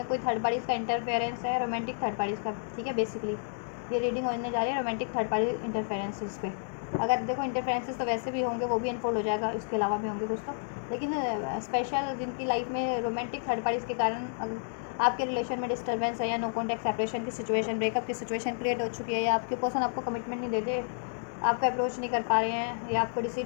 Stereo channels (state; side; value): silent; right; digital silence